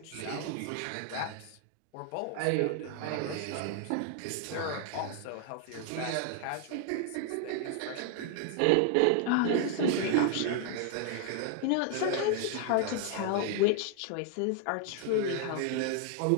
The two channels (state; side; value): different; both; correlation 0.00